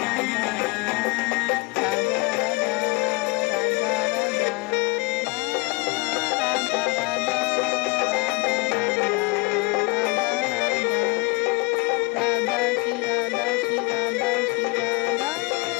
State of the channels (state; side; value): quieter; right; 25.9 dB